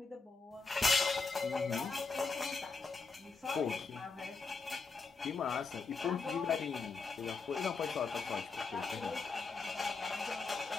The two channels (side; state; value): right; quieter; 4.4 dB